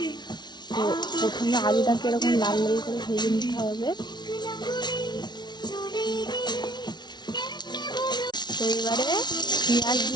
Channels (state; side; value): late; right; 0.20 ms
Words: তো প্রথমে আলুটাকে এরকম লাল লাল করে ভেজে নিতে হবে। তো এবারে পেঁয়াজ